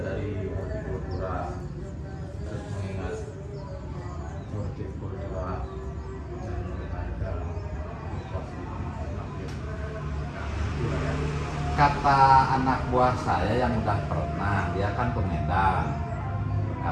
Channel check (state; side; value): identical; both; correlation 1.00